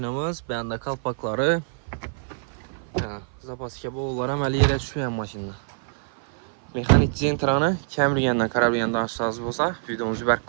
bende kalpakları. Zapaski bollar əməli yerə düşmeyen maşında. Mexanik Zentra'nı kəmriyəndən, karabiyəndən aşağısı olsa, videomuzu bərk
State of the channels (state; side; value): silent; left; 56 dB below the other